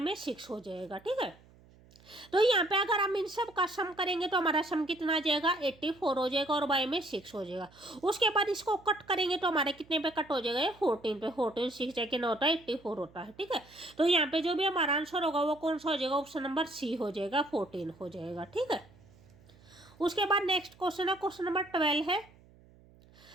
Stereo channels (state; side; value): noise; right; hum, 26 dB below the sound